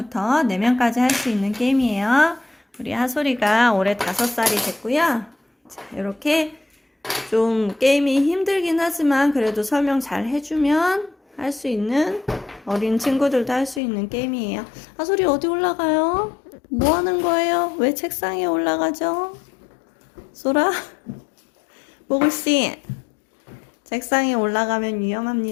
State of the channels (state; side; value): drops out; right; at 13.8 s